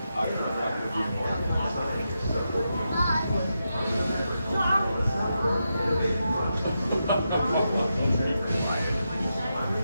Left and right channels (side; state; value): both; inverted; correlation -0.87